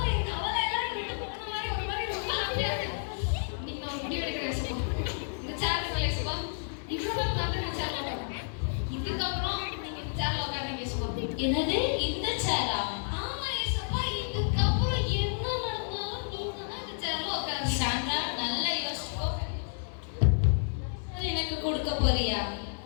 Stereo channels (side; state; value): right; silent; digital silence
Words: என் கவலை எல்லாம் விட்டு போன மாதிரி ஒரு மாதிரி ரொம்ப ஹாப்பியா இருக்கு. இன்னைக்கு நான் முடிவு எடுக்கிறேன் ஏசப்பா. இந்த சேர்ல ஏசப்பா, இவ்வளவு நாள் நான் சேர்ல உட்கார்றேன். இதுக்கப்புறம் நீங்க இந்த சேர்ல உட்காருங்க ஏசப்பா. என்னது இந்த சேரா? ஆமா ஏசப்பா, இதுக்கப்புறம் என்ன நடந்தாலும் நீங்க தான் இந்த சேர்ல உட்காருங்க. சாண்ட்ரா, நல்லா யோசிச்சுக்கோ. எனக்கு கொடுக்க போறியா?